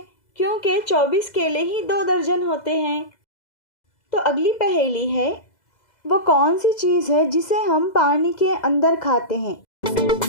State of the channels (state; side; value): late; right; 2.0 ms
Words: क्योंकि 24 केले ही 2 दर्जन होते हैं। तो अगली पहेली है, वो कौन सी चीज़ है जिसे हम पानी के अंदर खाते हैं?